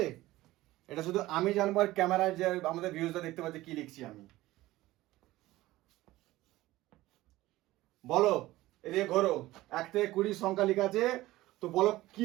এটা শুধু আমি জানবো আর ক্যামেরায় যে আমাদের ভিউজটা দেখতে পাচ্ছে কি লিখছি আমি বলো এদিকে ঘোরো 1 থেকে 20 সংখ্যা লেখা আছে তো বলো কি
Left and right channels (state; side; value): quieter; left; 17.3 dB